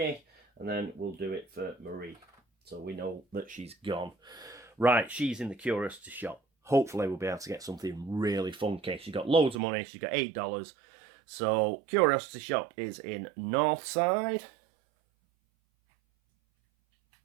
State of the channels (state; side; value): drops out; left; at 9.6 s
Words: and then we'll do it for Marie, so we know that she's gone. Right, she's in the curiosity shop. Hopefully we'll be able to get something really funky. She's got loads of money. She's got $8. So curiosity shop is in Northside.